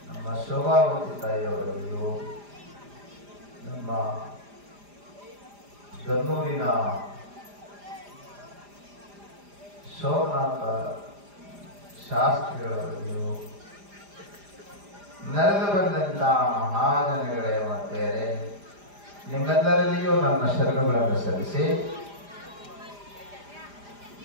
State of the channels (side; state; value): left; late; 4.9 ms